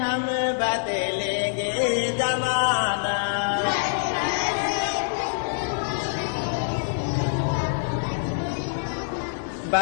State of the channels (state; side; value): silent; right; digital silence